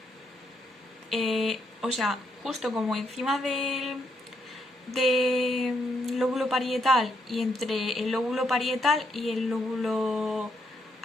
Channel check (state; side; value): normal; both; correlation 0.76